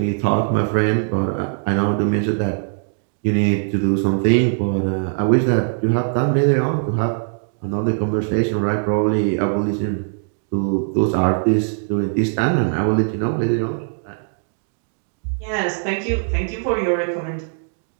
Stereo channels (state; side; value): silent; left; digital silence